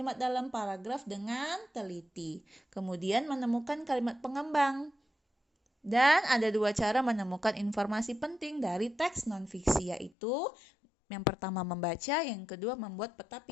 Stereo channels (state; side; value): drops out; right; at 10.1 s